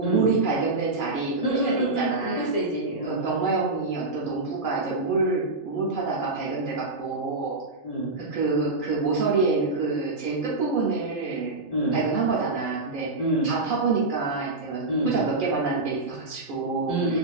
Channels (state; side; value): quieter; left; 3.2 dB